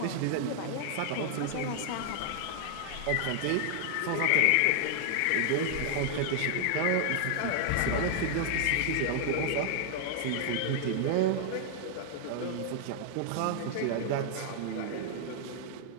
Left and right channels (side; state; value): both; different; correlation 0.00